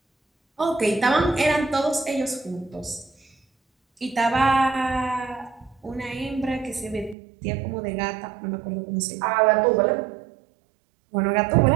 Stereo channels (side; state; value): left; drops out; at 7.2 s